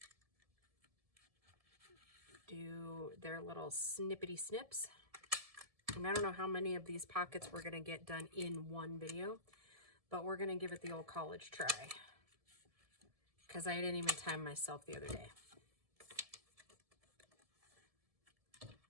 do their little snippety snips. And I don't know how many of these pockets we're going to get done in one video, but we're going to give it the old college try, because I didn't even time myself the other day.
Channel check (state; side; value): late; left; 1.7 ms